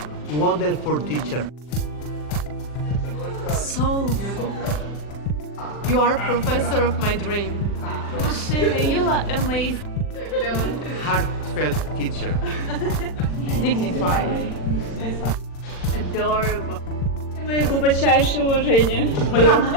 Wonderful teacher. Soulful. You are professor of my dream. Shelley, you are amazing. Heartfelt teacher. Dignified. Adorable. Мое глубочайшее уважение.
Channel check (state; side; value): late; right; 40 ms